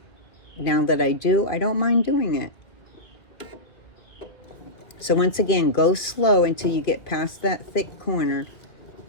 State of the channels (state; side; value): late; right; 2.3 ms